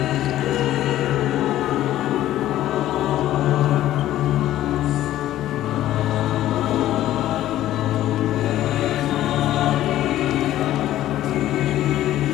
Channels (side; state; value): right; quieter; 13.6 dB